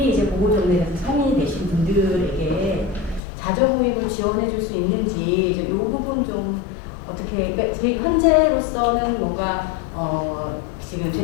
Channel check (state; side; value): drops out; right; at 3.2 s